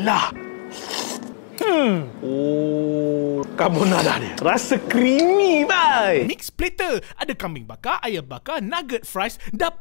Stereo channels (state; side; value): silent; right; digital silence